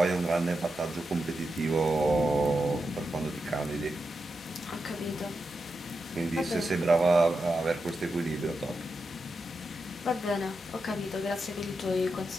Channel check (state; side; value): normal; both; correlation 0.88